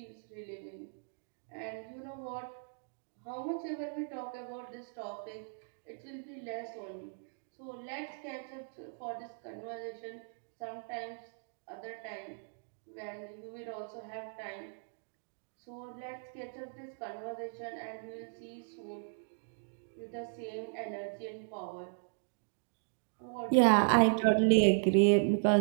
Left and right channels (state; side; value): silent; left; digital silence